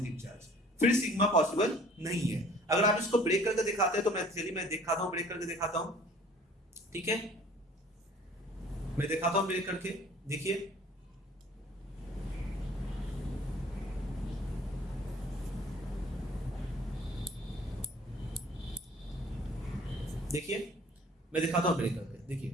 चार्ज, फिर सिग्मा पॉसिबल नहीं है। अगर आप इसको ब्रेक करके दिखाते हैं तो मैं दिखाता हूं, ब्रेक करके दिखाता हूं, ठीक है, मैं दिखाता हूं ब्रेक करके, देखिए देखिए मैं दिखाता हूं ब्रेक करके,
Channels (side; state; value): both; normal; correlation 0.52